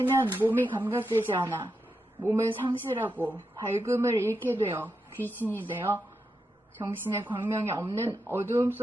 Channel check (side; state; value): both; normal; correlation 0.86